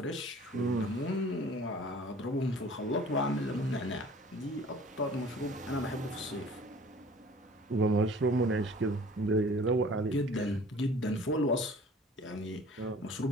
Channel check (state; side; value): normal; both; correlation 0.48